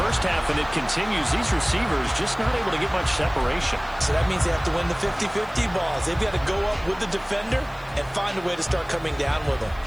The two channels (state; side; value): noise; left; hiss, 27 dB below the sound